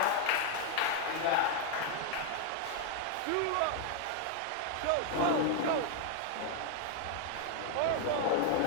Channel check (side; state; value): both; different; correlation 0.00